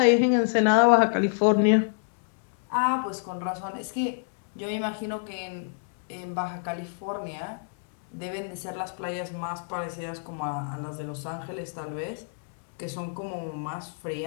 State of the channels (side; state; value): right; silent; digital silence